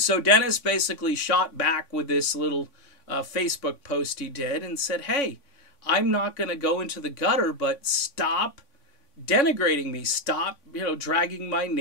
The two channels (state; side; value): late; right; 3.5 ms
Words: Dennis basically shot back with this little Facebook post he did and said, hey, I'm not going to go into the gutter, but stop denigrating me. Stop, dragging my